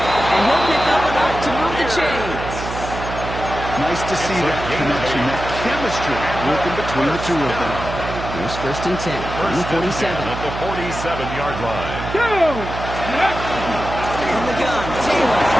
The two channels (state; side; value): noise; right; hum, 8 dB below the sound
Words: And he'll pick up enough to move the chains. Nice to see that connection, that chemistry working between the two of them. Here's 1st and 10 from the 47. At the 47-yard line. From the gun, Taylor.